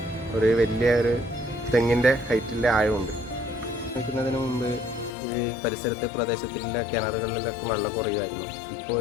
ഒരു വലിയൊരു തെങ്ങിൻ്റെ ഹൈറ്റിലെ ആഴമുണ്ട്. നിൽക്കുന്നതിന് മുമ്പ് ഈ പരിസരത്തെ പ്രദേശത്തിലെ കിണറുകളിലൊക്കെ വെള്ളം കുറയുമായിരുന്നു. ഇപ്പോൾ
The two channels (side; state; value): right; drops out; at 5.1 s